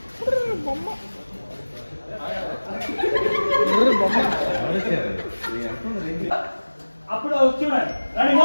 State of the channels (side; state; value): both; inverted; correlation -1.00